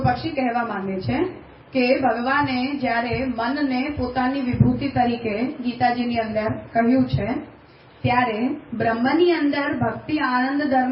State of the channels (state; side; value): identical; both; correlation 1.00